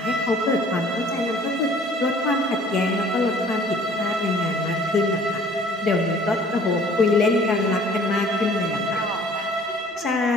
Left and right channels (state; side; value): normal; both; correlation 0.53